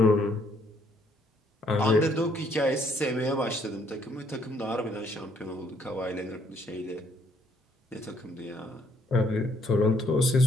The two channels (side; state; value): both; normal; correlation 0.67